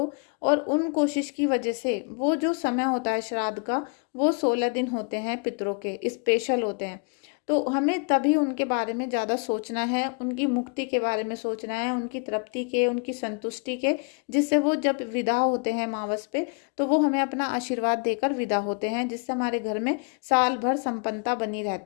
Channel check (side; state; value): right; quieter; 36.5 dB